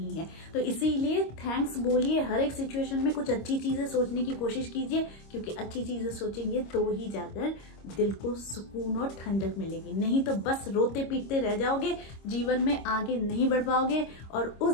है। तो इसीलिए थैंक्स बोलिए, हर एक सिचुएशन में कुछ अच्छी चीजें सोचने की कोशिश कीजिए, क्योंकि अच्छी चीजें सोचेंगे तो ही जाकर दिल को सुकून और ठंडक मिलेगी। नहीं तो बस रोते पीटते रह जाओगे, जीवन में आगे नहीं बढ़ पाओगे, और उस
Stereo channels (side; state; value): right; late; 26 ms